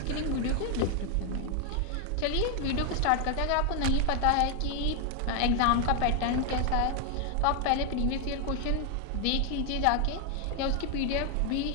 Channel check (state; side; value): different; both; correlation 0.01